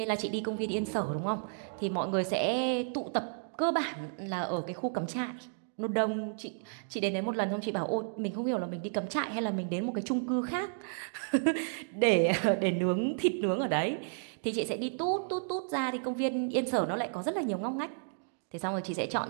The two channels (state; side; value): silent; left; digital silence